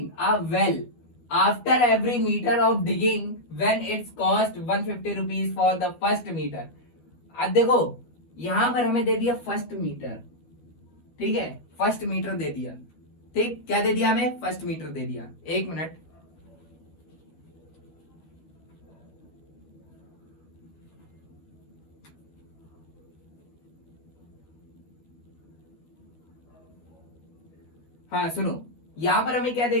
a well after every metre of digging when it's cost 150 rupees for the first metre. अब देखो यहां पर हमें दे दिया फर्स्ट मीटर। ठीक है, फर्स्ट मीटर दे दिया। ठीक, क्या दे दिया हमें, फर्स्ट मीटर दे दिया। एक मिनट, हाँ सुनो, यहाँ पर हमें क्या दे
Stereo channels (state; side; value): late; right; 12 ms